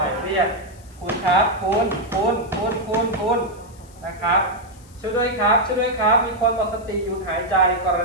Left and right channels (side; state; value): left; noise; hiss, 26 dB below the sound